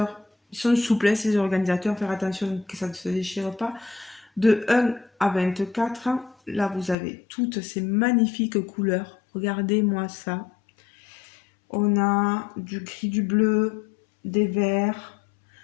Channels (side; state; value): right; drops out; at 7.0 s